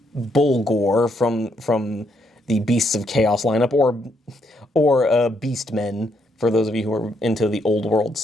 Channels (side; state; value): both; normal; correlation 0.74